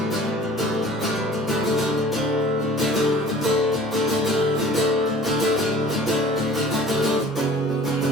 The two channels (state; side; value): normal; both; correlation 0.47